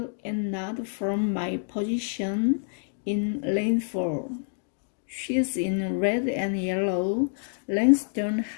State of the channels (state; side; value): silent; right; digital silence